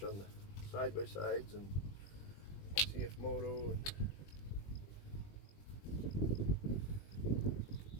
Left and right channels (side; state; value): right; late; 20 ms